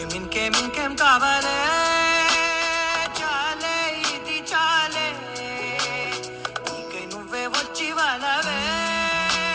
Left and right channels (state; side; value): identical; both; correlation 1.00